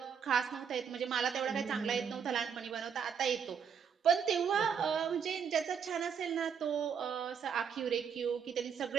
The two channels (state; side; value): quieter; left; 7.1 dB